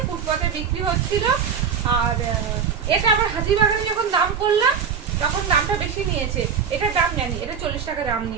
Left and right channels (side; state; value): left; quieter; 6.8 dB